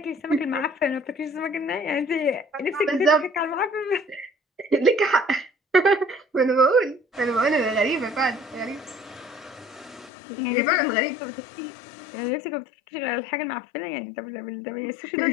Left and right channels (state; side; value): drops out; right; at 10.1 s